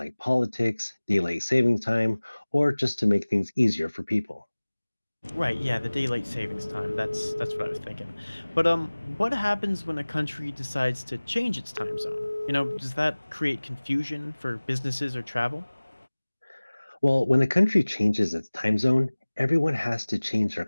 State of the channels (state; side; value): inverted; both; correlation -1.00